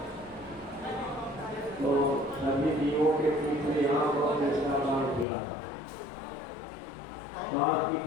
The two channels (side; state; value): right; drops out; at 5.2 s